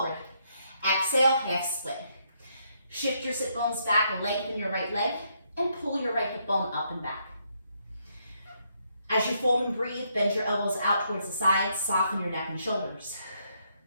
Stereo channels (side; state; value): both; inverted; correlation -0.74